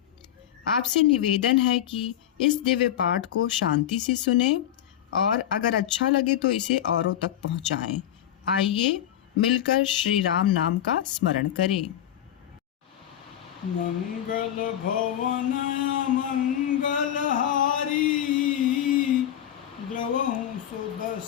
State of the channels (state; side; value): quieter; right; 11.1 dB